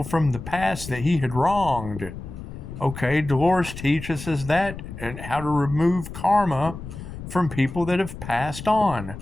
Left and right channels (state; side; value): noise; left; rumble, 11 dB below the sound